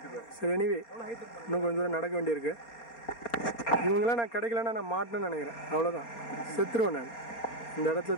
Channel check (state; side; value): late; right; 4.3 ms